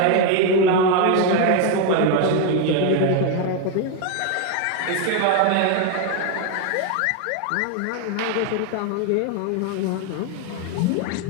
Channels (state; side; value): different; both; correlation 0.01